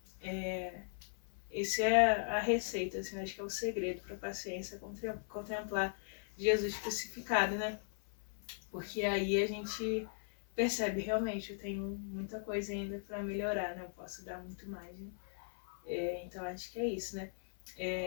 esse é a receita, assim, acho que é o segredo para a paciência, contemplar Jesus crucificado, né? Porque aí a gente percebe realmente, eu tenho muita coisa ainda para melhorar, né? Eu posso dar muito mais, né? Então acho que é isso, né?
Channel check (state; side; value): silent; right; 52 dB below the other